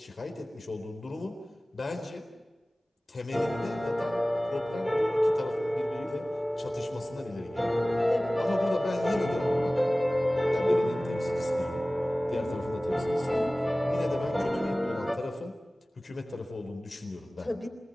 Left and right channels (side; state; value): both; normal; correlation 0.98